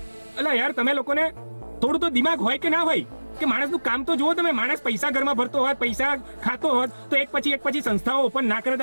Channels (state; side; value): inverted; both; correlation -1.00